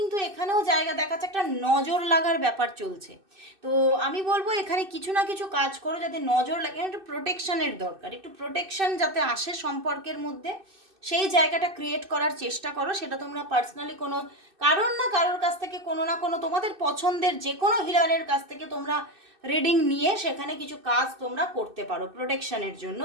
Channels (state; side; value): late; left; 2.6 ms